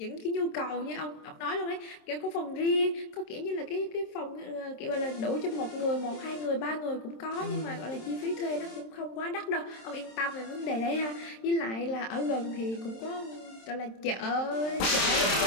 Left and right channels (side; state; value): right; late; 27 ms